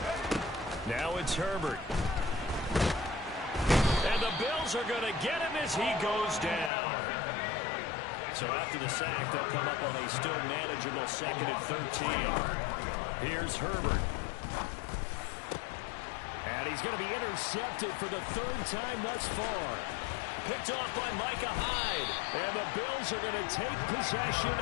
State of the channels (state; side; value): drops out; right; at 6.7 s